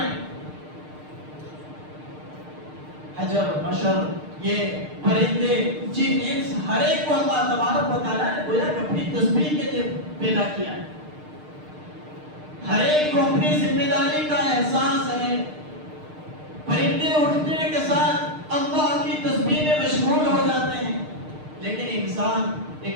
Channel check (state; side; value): late; left; 6.6 ms